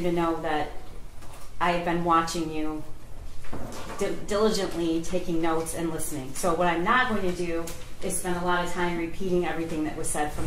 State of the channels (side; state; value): both; identical; correlation 1.00